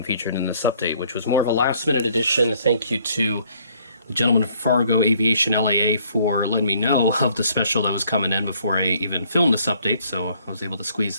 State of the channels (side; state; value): both; inverted; correlation -0.63